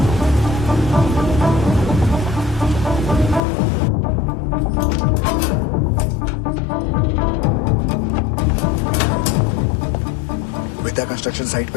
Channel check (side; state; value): right; drops out; at 3.4 s